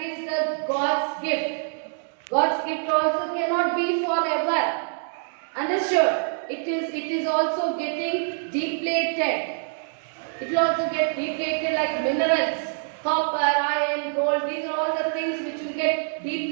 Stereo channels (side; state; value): left; silent; digital silence